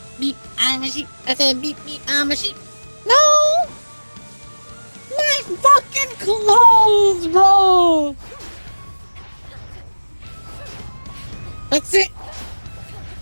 beep, I'm a sheep. I said beep, beep, I'm a sheep. No! My fucking clothes, bro! That's it!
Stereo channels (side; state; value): both; inverted; correlation -1.00